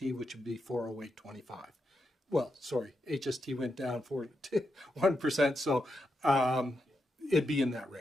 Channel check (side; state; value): both; normal; correlation 0.85